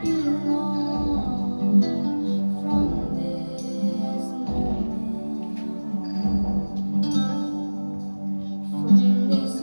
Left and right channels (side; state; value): both; inverted; correlation -1.00